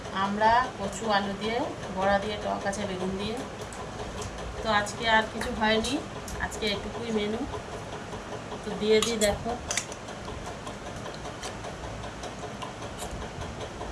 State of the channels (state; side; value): identical; both; correlation 1.00